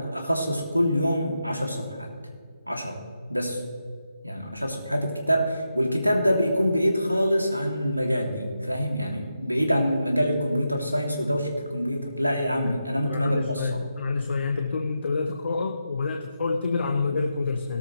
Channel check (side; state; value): both; inverted; correlation -0.86